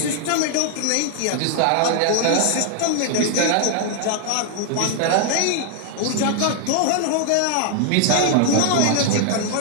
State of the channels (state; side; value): different; both; correlation 0.00